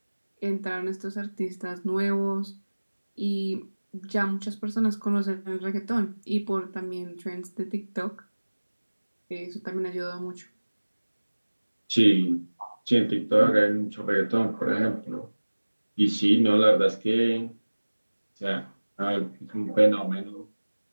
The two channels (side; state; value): both; inverted; correlation -1.00